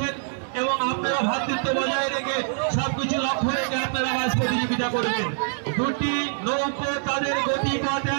এবং আপনারা ভ্রাতৃত্ব বজায় রেখে সবকিছু লক্ষ্য রেখে আপনারা ম্যাচ প্রতিযোগিতা করবেন। দুটি নৌকো তাদের গতিপথ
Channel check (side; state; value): left; silent; digital silence